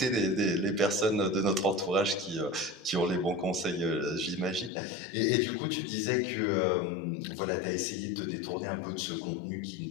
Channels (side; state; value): right; drops out; at 4.7 s